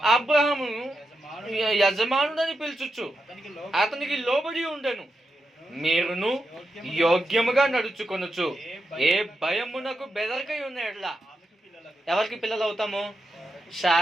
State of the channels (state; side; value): normal; both; correlation 0.86